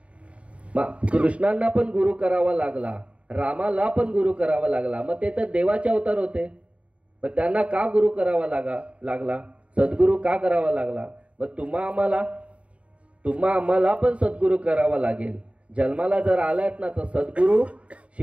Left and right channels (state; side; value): late; left; 0.063 ms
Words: कृष्णांना पण गुरु करावा लागला, रामाला पण गुरु करावा लागला. मग ते तर देवाचे अवतार होते, पण त्यांना का गुरु करावा लागला, सद्गुरु का करावा लागला. मग तुम्हा आम्हाला पण सद्गुरु करावा लागेल. जन्माला जर आलात ना तर सद्गुरु